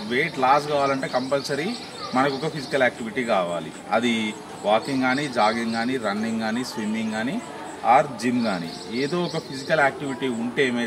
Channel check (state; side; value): identical; both; correlation 1.00